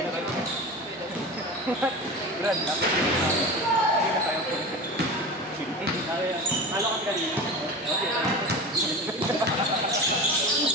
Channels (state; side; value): normal; both; correlation 0.30